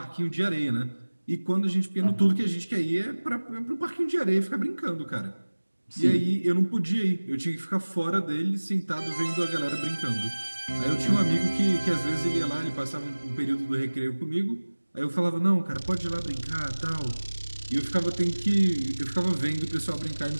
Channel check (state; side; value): inverted; both; correlation -1.00